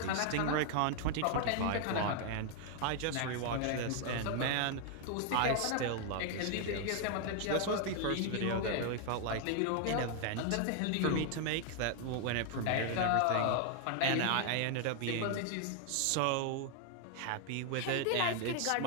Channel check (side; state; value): both; different; correlation 0.00